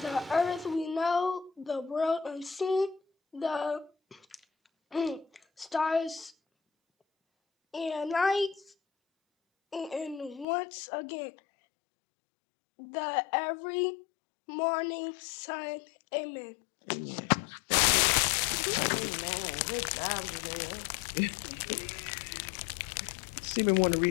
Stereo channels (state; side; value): drops out; right; at 10.5 s